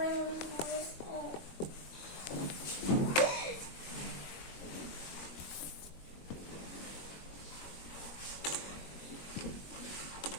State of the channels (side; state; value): right; late; 21 ms